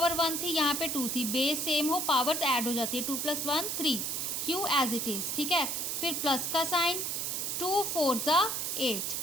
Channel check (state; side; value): noise; right; hiss, 1 dB below the sound